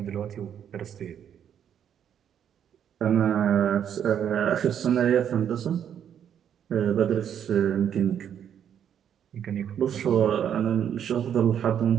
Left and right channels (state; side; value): quieter; left; 9.0 dB